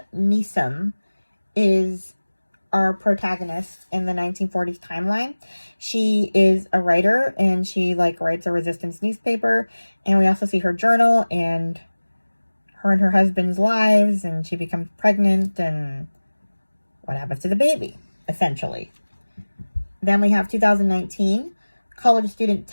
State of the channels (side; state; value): both; inverted; correlation -1.00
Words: Neeson is our protagonist in the 1940s timeline. She is a writer, and she like writes a resistance newspaper. And we also see her journal and her and her husband's lives, and she becomes pregnant and what happens to the baby, essentially. Then we have 2019. College student